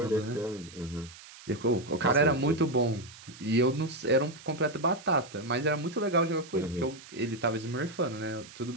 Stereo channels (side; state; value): right; noise; hiss, 18 dB below the sound